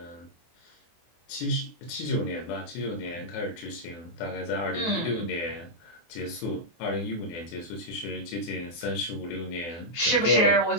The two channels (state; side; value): late; right; 24 ms